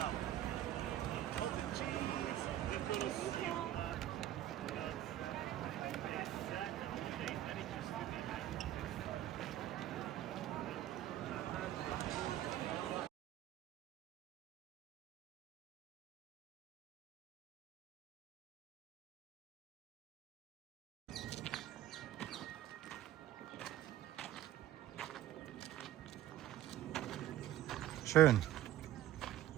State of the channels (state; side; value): quieter; left; 12.9 dB